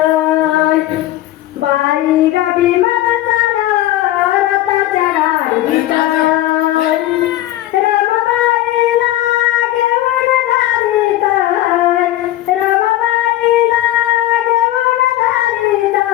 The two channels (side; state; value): right; quieter; 14.8 dB